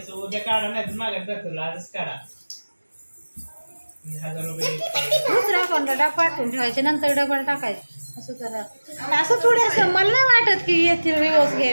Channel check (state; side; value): inverted; both; correlation -1.00